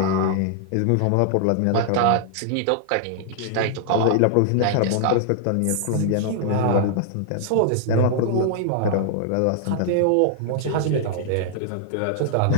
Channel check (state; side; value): different; both; correlation -0.01